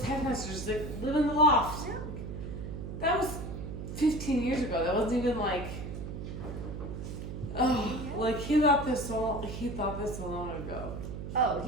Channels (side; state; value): right; noise; hum, 7 dB below the sound